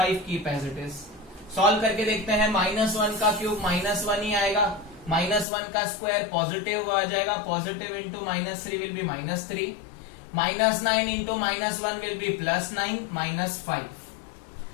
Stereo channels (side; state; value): right; drops out; at 5.5 s